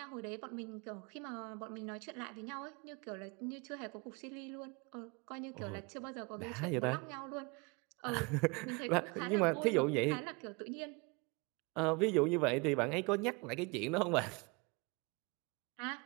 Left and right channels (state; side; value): quieter; left; 28.7 dB